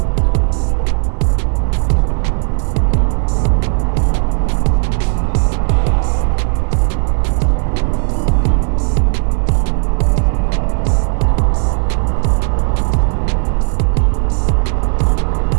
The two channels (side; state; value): left; silent; digital silence